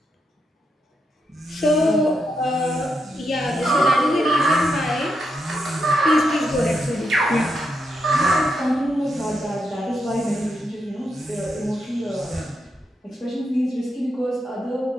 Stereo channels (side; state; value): both; normal; correlation 0.82